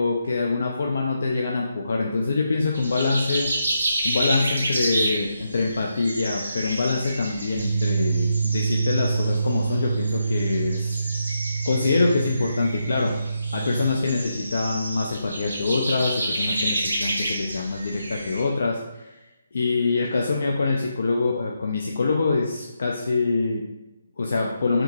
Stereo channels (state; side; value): inverted; both; correlation -0.83